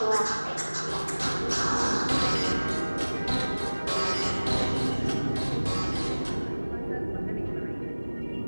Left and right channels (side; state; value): both; inverted; correlation -1.00